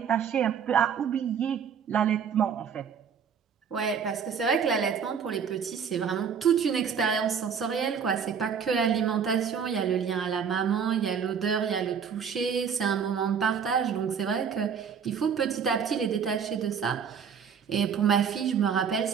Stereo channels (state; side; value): quieter; left; 7.0 dB